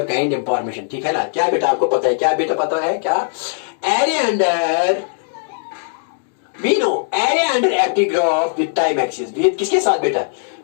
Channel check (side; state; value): right; silent; digital silence